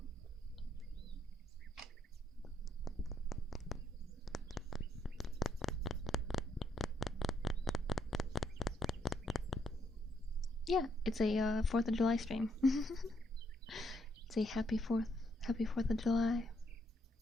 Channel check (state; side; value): normal; both; correlation 0.75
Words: Yeah, it's a 4th of July stream. It's a happy 4th of July.